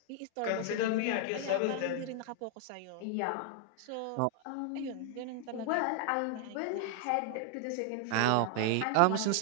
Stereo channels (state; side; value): different; both; correlation 0.00